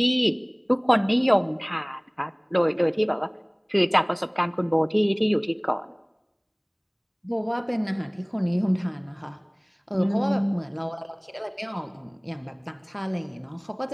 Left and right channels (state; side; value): identical; both; correlation 1.00